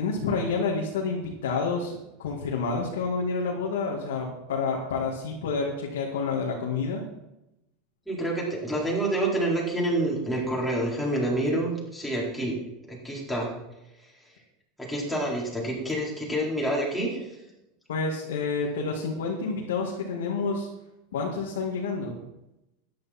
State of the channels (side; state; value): both; normal; correlation 0.07